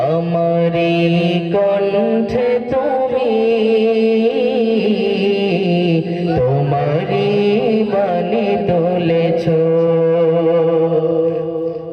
আমারি কণ্ঠে তুমি তোমারি বাণী তুলেছো,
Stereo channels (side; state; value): both; identical; correlation 1.00